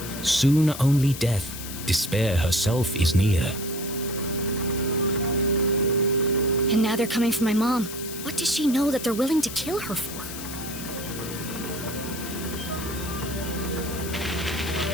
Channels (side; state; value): left; noise; hiss, 10 dB below the sound